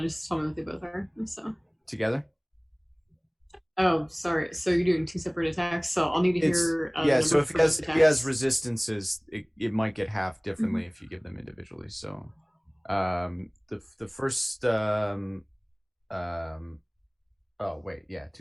tell me what they both are. So. Together? Oh, sorry. So you're doing 2 separate attacks. So I'll need to hear. Yeah. the So number if for he has those if he has attacks. resistances, it might get half differently if you give them individually. So, the first oh wait, yeah,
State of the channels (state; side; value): identical; both; correlation 1.00